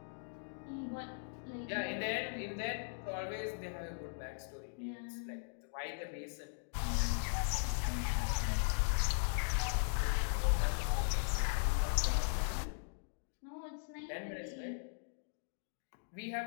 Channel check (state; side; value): silent; right; digital silence